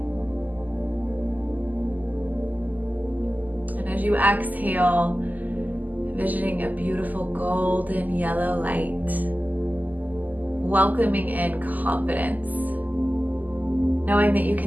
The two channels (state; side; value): late; left; 0.082 ms